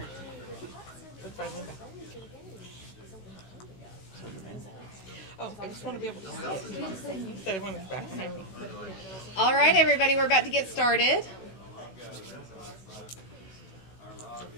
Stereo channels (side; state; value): right; late; 16 ms